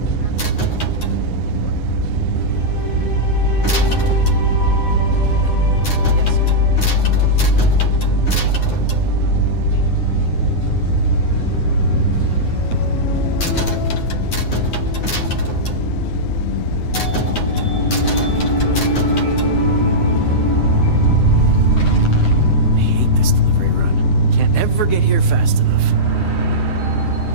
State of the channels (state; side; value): late; right; 9.5 ms